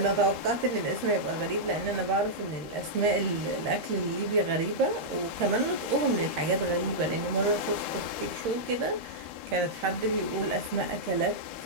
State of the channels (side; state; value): left; late; 13 ms